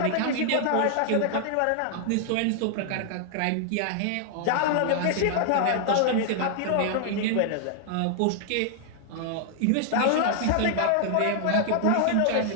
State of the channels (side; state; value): both; different; correlation -0.01